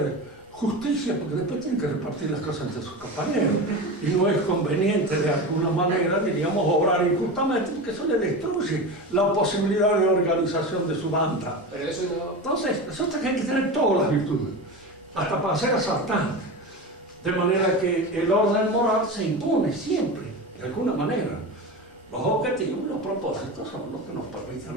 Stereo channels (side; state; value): both; normal; correlation 0.25